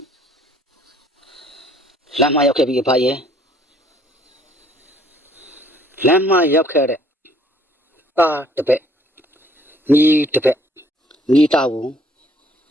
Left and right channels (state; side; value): normal; both; correlation 0.61